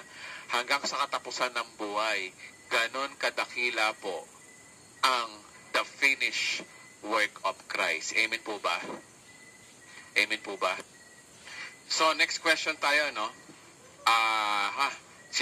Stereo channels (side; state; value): both; identical; correlation 1.00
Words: hanggang sa katapusan ng buhay. Ganon kadakila po ang the finished work of Christ. Amen po ba? Amen po ba? So, next question tayo, no?